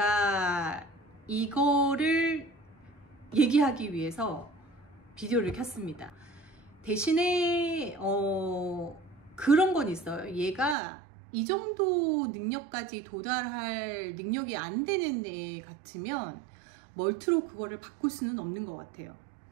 이거를 얘기하기 위해서 비디오를 켰습니다. 대신에 그런 건 있어요. 얘가 이 정도 능력까지 도달할 능력이 안 되는 애 같으면 멀트로 그거를 바꿀 수는 없는 것 같아요.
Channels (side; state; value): left; drops out; at 10.8 s